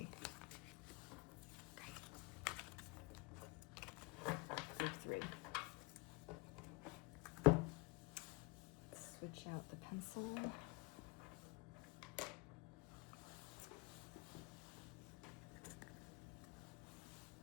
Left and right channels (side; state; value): right; quieter; 26.1 dB